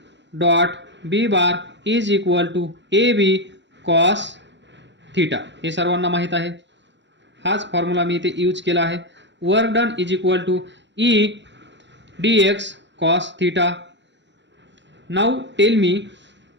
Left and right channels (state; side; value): late; left; 0.52 ms